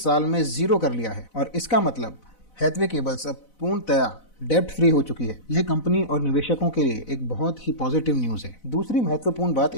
साल में 0 कर लिया है और इसका मतलब हैथवे केबल्स अब पूर्णतया डेब्ट फ्री हो चुकी है। यह कंपनी और निवेशकों के लिए एक बहुत ही पॉजिटिव न्यूज है। दूसरी महत्वपूर्ण बात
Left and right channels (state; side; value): late; right; 4.0 ms